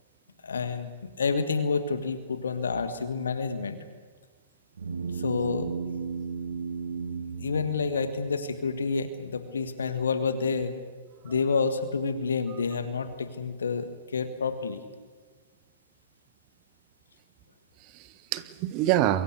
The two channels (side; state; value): both; inverted; correlation -0.58